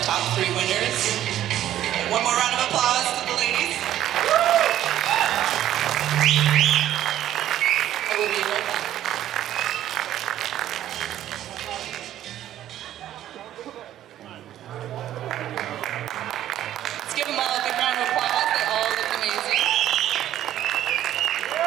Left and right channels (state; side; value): quieter; left; 12.2 dB